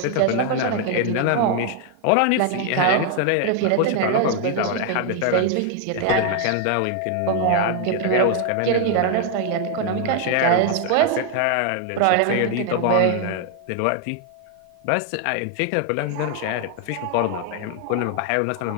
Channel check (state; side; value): different; both; correlation 0.00